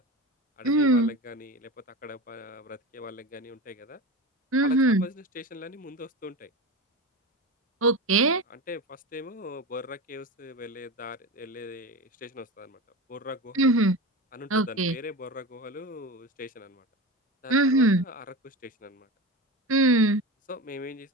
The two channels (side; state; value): both; normal; correlation 0.26